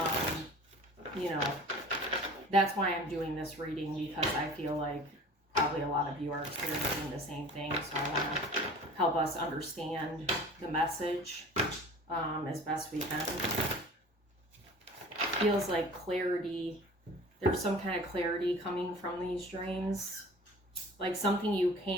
you know, that's why I'm doing this reading, because I feel like probably a lot of you are experiencing the same thing, so I want to help us understand the message as best we can. Feels like clarity. There's some kind of clarity coming from these dreams, like something you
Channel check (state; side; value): normal; both; correlation 0.43